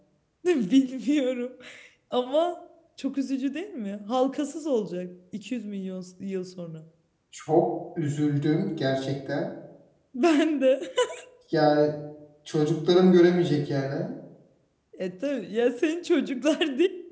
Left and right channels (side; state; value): both; identical; correlation 1.00